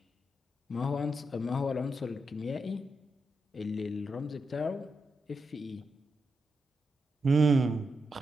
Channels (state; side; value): normal; both; correlation 0.85